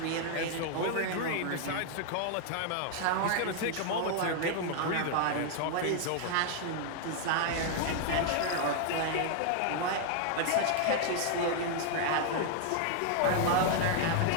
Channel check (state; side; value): different; both; correlation 0.00